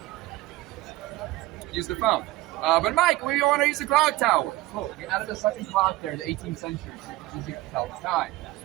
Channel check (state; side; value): quieter; left; 18.0 dB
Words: Use the phone. But Mike, we want to use the clock tower. Cool. We added a second clock there in the 18th century, so it's easier to tell the time.